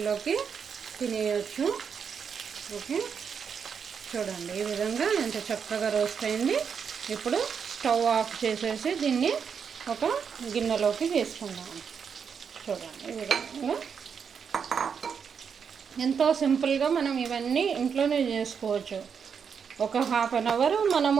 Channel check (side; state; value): left; quieter; 6.7 dB